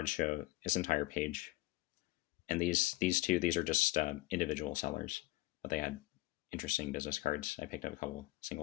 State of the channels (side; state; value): right; quieter; 18.8 dB